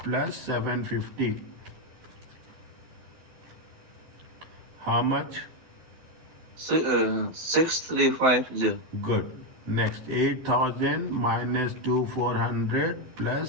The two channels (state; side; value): late; left; 12 ms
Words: 750. How much? 6,350. Good. Next, 8,000 minus 2,400